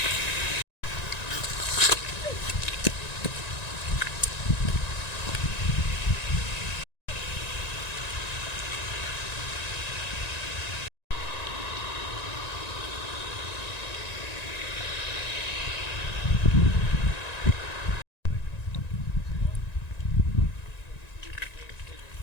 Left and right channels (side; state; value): right; late; 1.9 ms